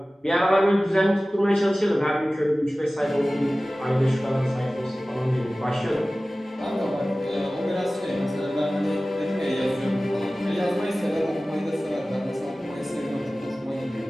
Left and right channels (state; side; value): normal; both; correlation 0.97